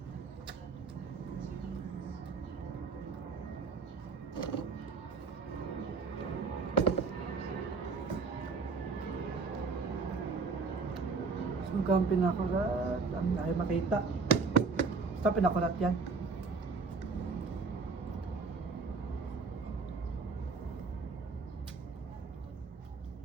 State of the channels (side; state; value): left; quieter; 4.6 dB